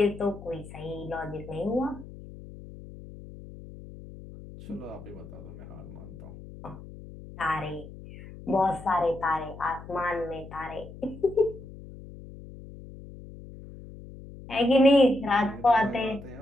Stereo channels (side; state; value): left; noise; hum, 15 dB below the sound